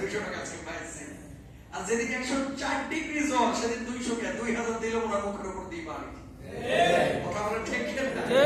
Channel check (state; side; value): identical; both; correlation 1.00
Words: 200 টাকা আছে পাইছে। আর যেদিন 104 ডিগ্রি জ্বর, সেদিন 200 কে 2000 দিলে ওনার মুখের উপর দিয়ে বাড়ি। কথা বলে ঠিক না?